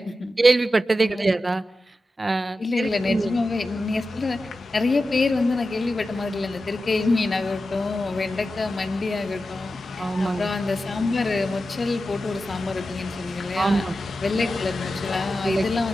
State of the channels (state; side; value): normal; both; correlation 0.92